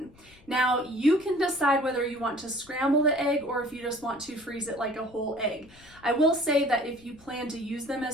Now, you can decide whether you want to scramble the egg or if you just want to freeze it like a whole egg. I will say that if you plan to use them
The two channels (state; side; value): noise; left; rumble, 26 dB below the sound